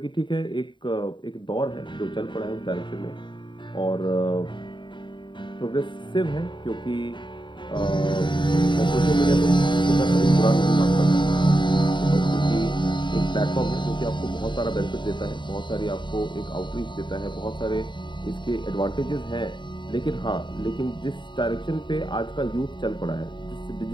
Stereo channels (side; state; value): right; late; 0.23 ms